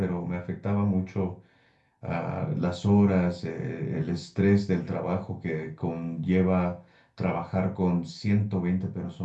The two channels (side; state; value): both; identical; correlation 1.00